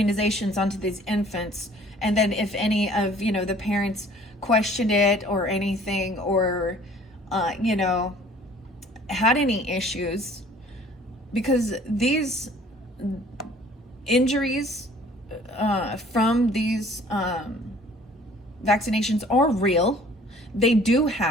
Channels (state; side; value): normal; both; correlation 0.53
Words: onto these infants. And then if any of, the parents questioned it or anything, or, had any issues, because these injuries from these vaccinations are real. They do